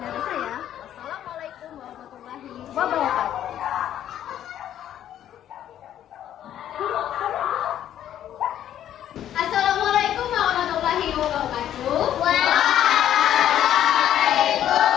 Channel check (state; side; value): quieter; right; 11.1 dB